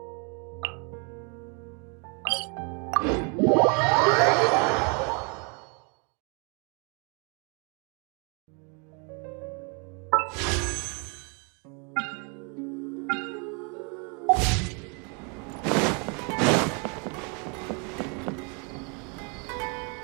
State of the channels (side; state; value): left; quieter; 35.3 dB